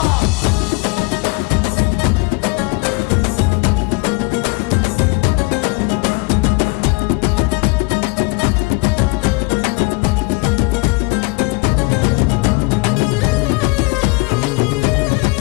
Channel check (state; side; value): quieter; right; 26.4 dB